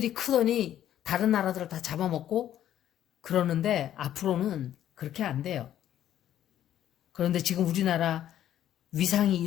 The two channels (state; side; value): quieter; right; 11.4 dB